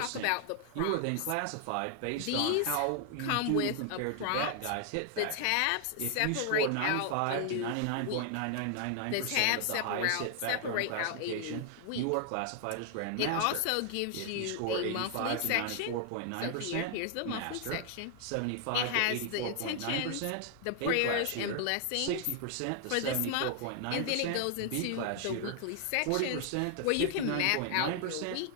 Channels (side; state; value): both; different; correlation 0.00